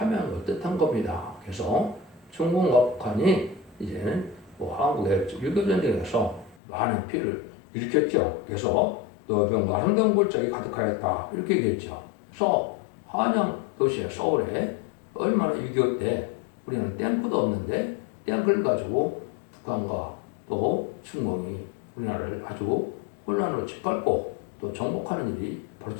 걸 뜻한 겁니다. 그래서 중공과 북한이 이제는 한국의 6.25 전쟁에서 많은 피해를 일으켰죠. 그래서 너희 병과 아름다운 골짜기 가득하였다 이렇게 얘기했죠. 그래서 한양 도시의 서울에 얼마나 6.25 때 우리는 탱크도 없는데 탱크를 가지고 북한과 또 중공이 우리나라를 아주 혼란으로 짓밟고 또 정복하는 일이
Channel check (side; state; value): right; drops out; at 6.6 s